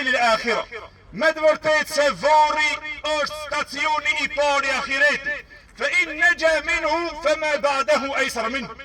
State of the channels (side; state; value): both; identical; correlation 1.00